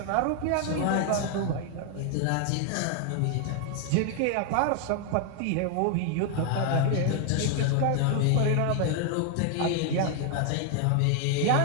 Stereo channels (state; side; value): different; both; correlation 0.00